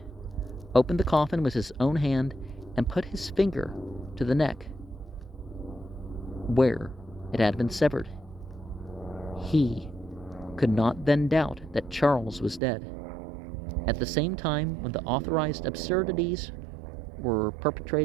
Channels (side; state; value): left; drops out; at 12.6 s